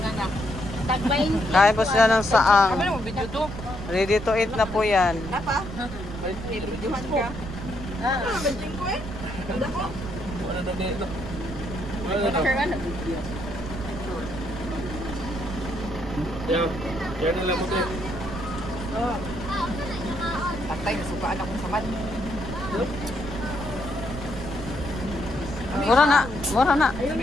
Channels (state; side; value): noise; right; rumble, 9 dB below the sound